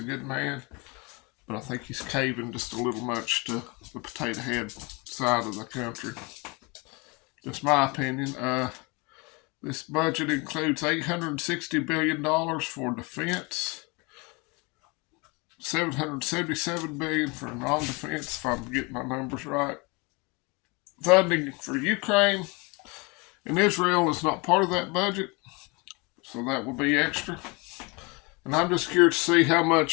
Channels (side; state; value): right; quieter; 28.2 dB